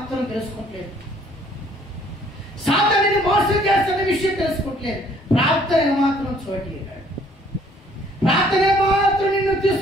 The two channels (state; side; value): normal; both; correlation 0.60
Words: తెలుసుకోవట్లేదు. సాతానుని మోసం చేస్తున్న విషయం తెలుసుకోవట్లేదు. ప్రార్థన మాత్రం చోటిగాడు. ప్రార్థన మాత్రం నిన్ను